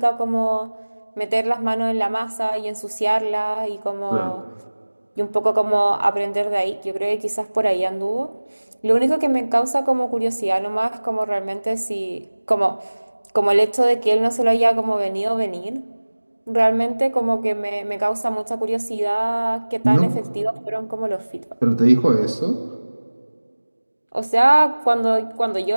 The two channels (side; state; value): both; inverted; correlation -1.00